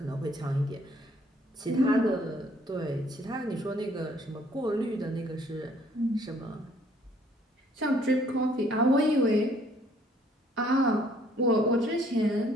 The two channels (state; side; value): normal; both; correlation 0.62